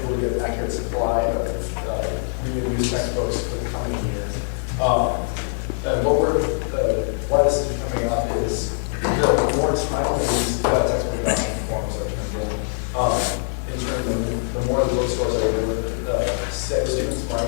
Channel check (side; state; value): right; silent; digital silence